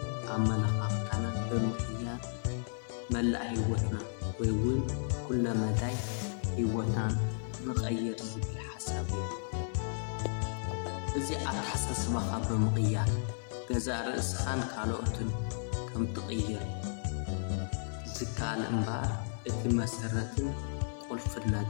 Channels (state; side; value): silent; right; 55 dB below the other